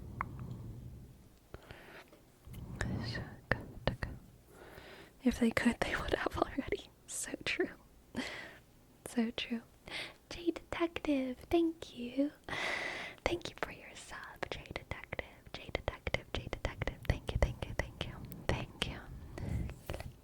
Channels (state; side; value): identical; both; correlation 1.00